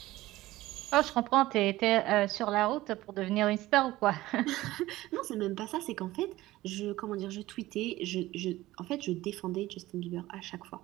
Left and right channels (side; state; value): left; quieter; 17.1 dB